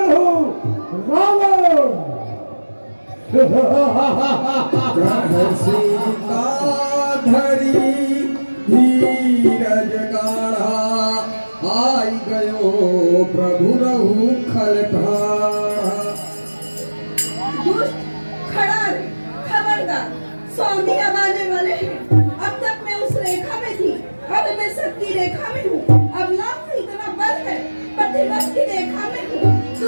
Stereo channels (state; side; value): inverted; both; correlation -1.00